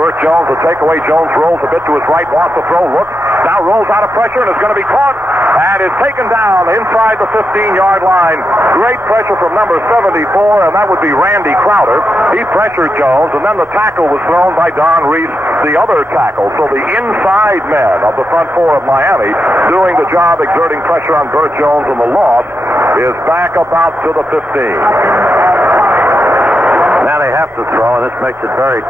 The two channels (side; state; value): both; normal; correlation 0.86